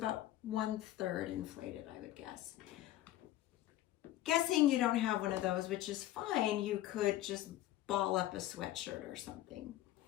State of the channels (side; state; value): right; quieter; 14.5 dB